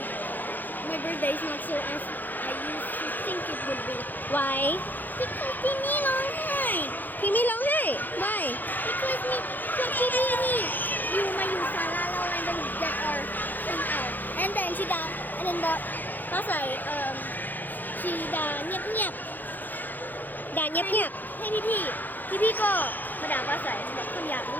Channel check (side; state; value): right; late; 0.086 ms